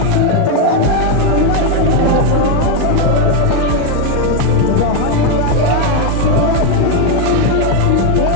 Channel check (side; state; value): both; different; correlation 0.02